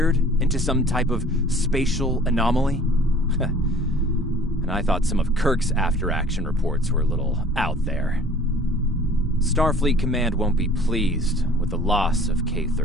into some type of spatial anomaly? And I thought some of Kirk's after-action reports were a little out there. Starfleet Command won't be pleased with the loss of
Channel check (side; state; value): both; normal; correlation 0.50